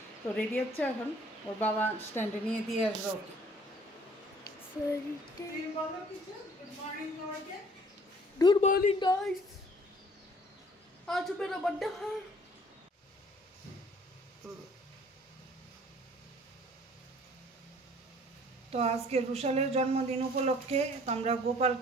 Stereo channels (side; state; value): both; normal; correlation 0.55